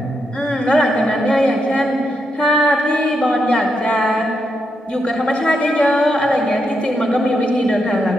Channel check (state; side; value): normal; both; correlation 0.82